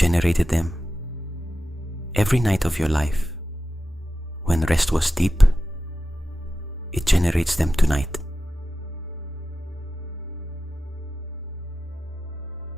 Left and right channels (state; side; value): normal; both; correlation 0.92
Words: them every night of your life. When rest was deep, it generates them tonight.